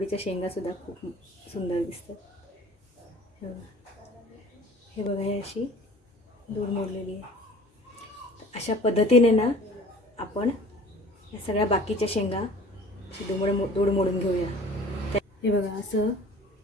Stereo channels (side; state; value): both; normal; correlation 0.46